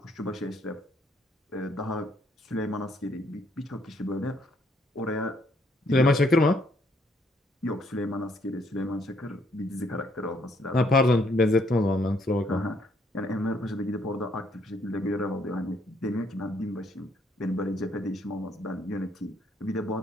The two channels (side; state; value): both; normal; correlation 0.69